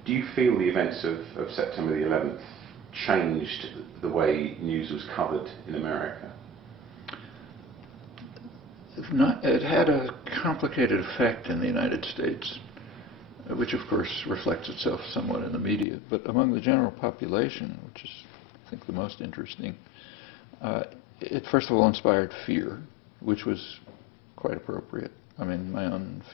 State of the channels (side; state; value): right; drops out; at 15.9 s